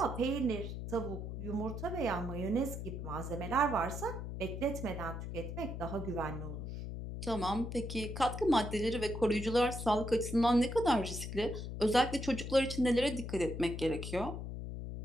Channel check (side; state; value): left; noise; hum, 6 dB below the sound